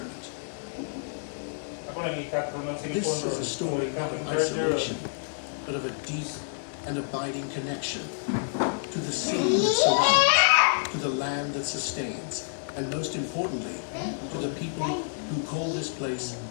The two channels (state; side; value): silent; right; digital silence